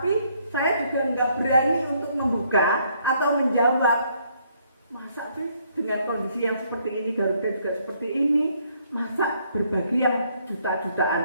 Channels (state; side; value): inverted; both; correlation -0.68